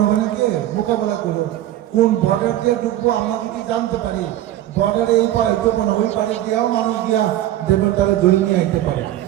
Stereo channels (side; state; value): left; quieter; 13.4 dB